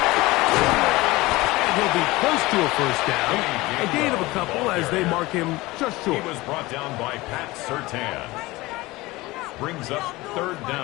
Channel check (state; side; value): quieter; right; 20.4 dB